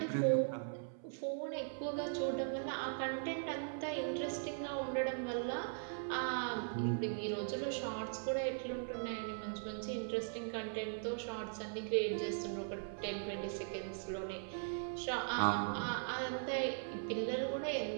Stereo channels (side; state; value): left; silent; 51 dB below the other